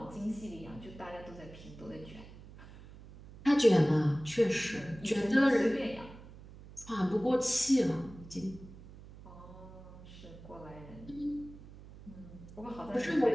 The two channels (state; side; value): noise; right; hum, 17 dB below the sound